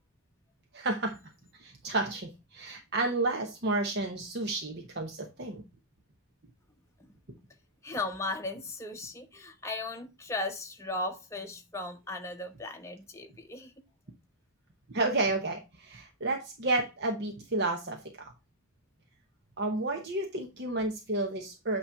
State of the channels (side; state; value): both; normal; correlation -0.17